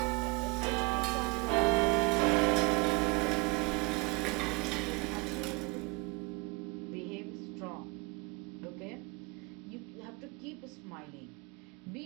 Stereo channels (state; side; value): quieter; left; 28.2 dB